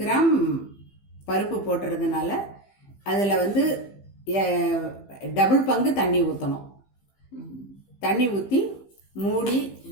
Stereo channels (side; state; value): right; late; 15 ms